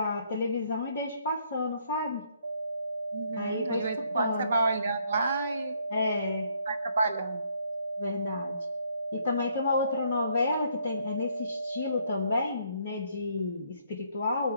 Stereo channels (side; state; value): both; inverted; correlation -0.69